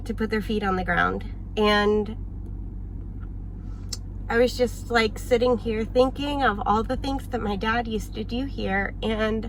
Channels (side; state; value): both; identical; correlation 1.00